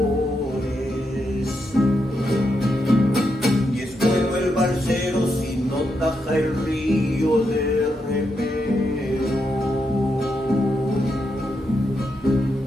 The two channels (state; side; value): normal; both; correlation 0.82